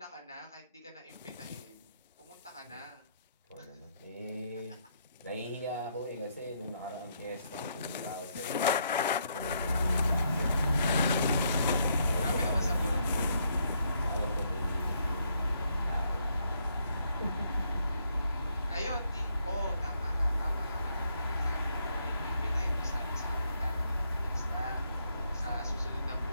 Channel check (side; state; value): both; inverted; correlation -0.75